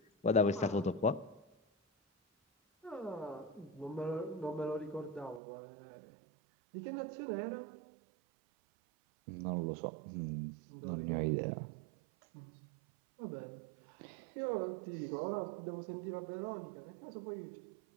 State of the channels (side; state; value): left; drops out; at 5.4 s